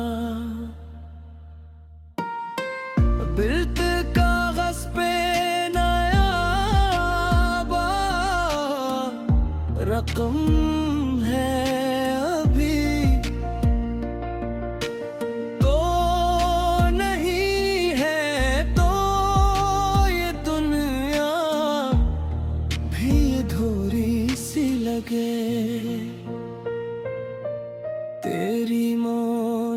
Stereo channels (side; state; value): both; identical; correlation 1.00